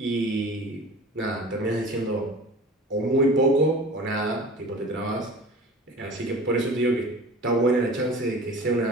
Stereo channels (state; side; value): normal; both; correlation 0.40